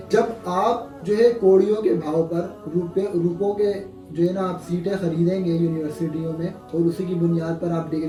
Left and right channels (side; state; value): both; identical; correlation 1.00